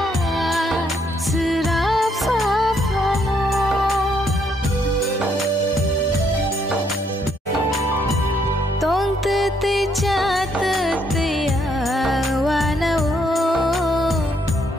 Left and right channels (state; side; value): normal; both; correlation 0.72